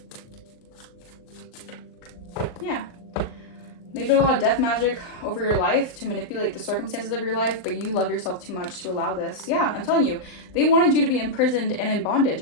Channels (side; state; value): right; late; 39 ms